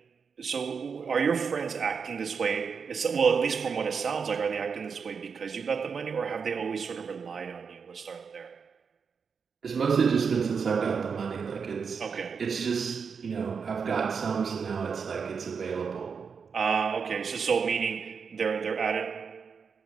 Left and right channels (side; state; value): left; quieter; 5.9 dB